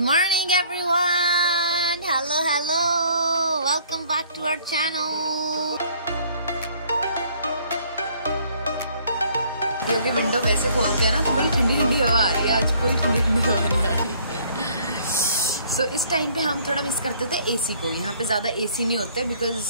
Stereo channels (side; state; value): both; inverted; correlation -0.59